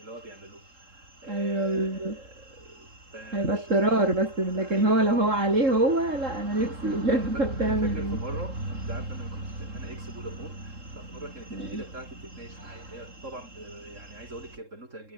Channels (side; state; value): left; late; 3.7 ms